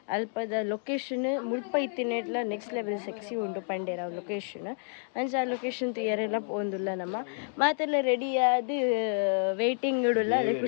ಅಲ್ಪದ ಲೊಕೇಶನ್ ಮುಲ್ಪ ಇತ್ತಿನೆಟ್ಲ ನೆಕ್ಸ್ಟ್ ಲೆವೆಲ್ ಸೆಕ್ಸಿ ಉಂಟು ಪಂಡೇರ ಲೊಕೇಶನ್ ಅಂಚ ಆ ಲೊಕೇಶನ್ ಯಾರೆಲ್ಲ ಪೋಂದಿಲ್ಲ ನಮ್ಮ ಮಾತೆಲ್ಲ ರೆಡಿ ಆದ ವೇಟಿಂಗ್ ಇಡಲ್ಲ ಅದೇ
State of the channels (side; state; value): right; silent; 58 dB below the other